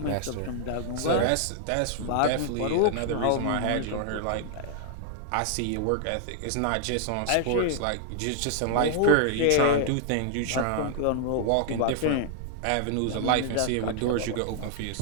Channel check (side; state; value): both; different; correlation 0.00